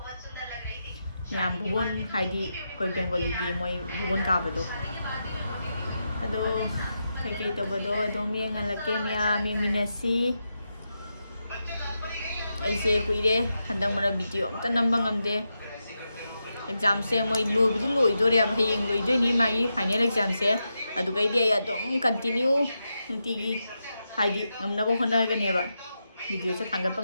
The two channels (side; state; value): both; inverted; correlation -0.87